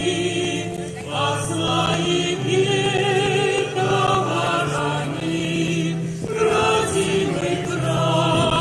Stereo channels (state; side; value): identical; both; correlation 1.00